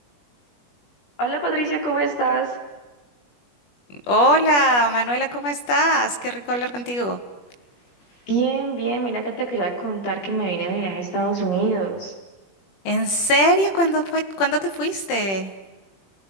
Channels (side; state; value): right; late; 21 ms